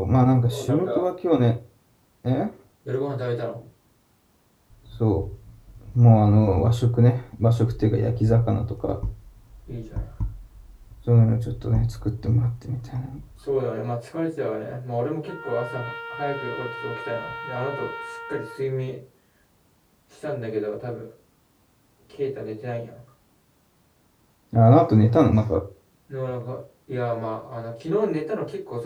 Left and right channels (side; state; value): both; identical; correlation 1.00